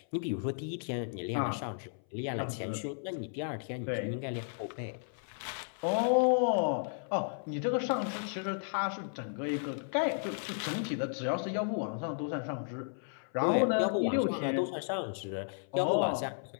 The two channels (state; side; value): silent; right; 55 dB below the other